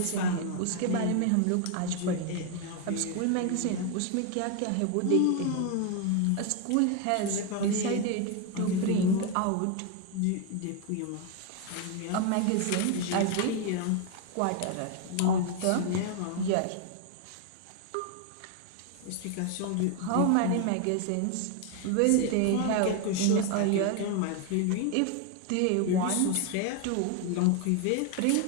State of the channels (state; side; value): different; both; correlation 0.01